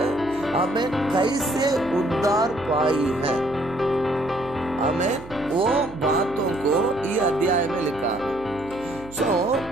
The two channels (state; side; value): noise; right; hum, 18 dB below the sound